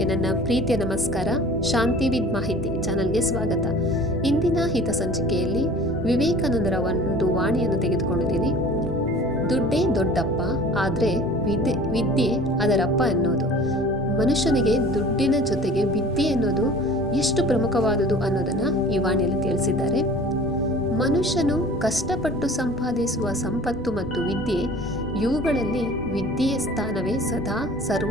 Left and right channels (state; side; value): noise; right; rumble, 16 dB below the sound